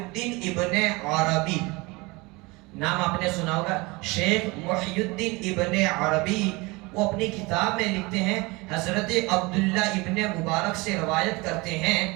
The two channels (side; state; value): left; quieter; 24.6 dB